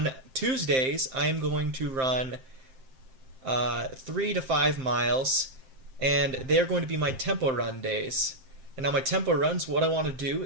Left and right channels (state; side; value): late; left; 7.6 ms